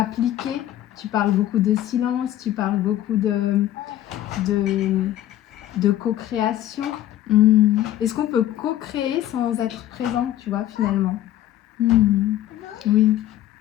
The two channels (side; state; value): right; quieter; 13.0 dB